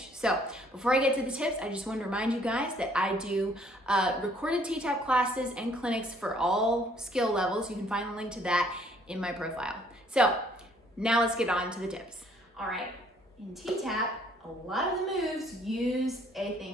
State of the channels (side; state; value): both; normal; correlation 0.62